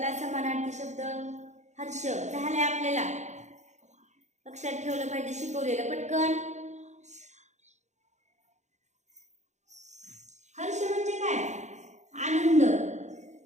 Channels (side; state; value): left; late; 0.34 ms